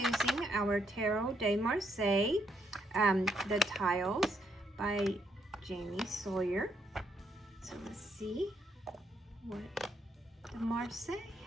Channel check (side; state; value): both; normal; correlation 0.74